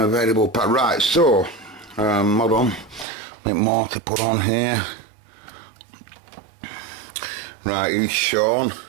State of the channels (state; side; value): drops out; left; at 3.1 s